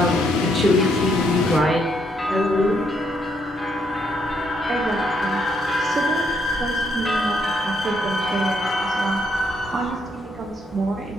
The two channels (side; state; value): both; normal; correlation 0.73